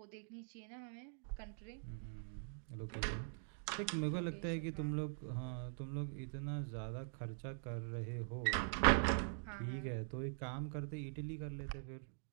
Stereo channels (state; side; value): silent; left; digital silence